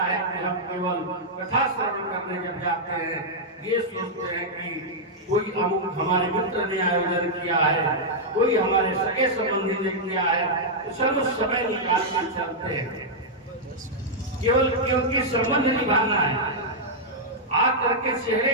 है कि हम केवल कथा श्रवण करने जब जाते हैं, ये सोचते हैं कि कोई हमारे मित्र ने आयोजन किया है, कोई हमारे सगे संबंधी ने किया है, तो चलो समय निकाल कर चलते हैं, केवल क्योंकि संबंध निभाना है, आकर के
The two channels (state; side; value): normal; both; correlation -0.06